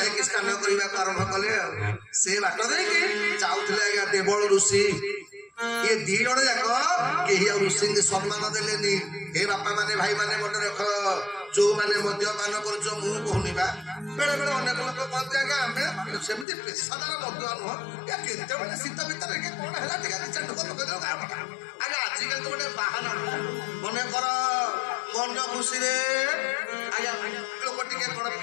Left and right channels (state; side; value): drops out; right; at 16.4 s